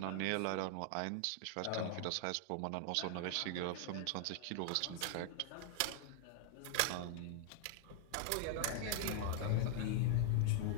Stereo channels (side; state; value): both; different; correlation 0.00